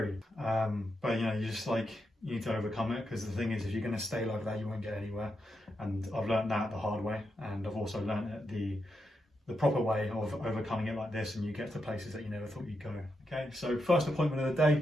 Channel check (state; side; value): normal; both; correlation 0.84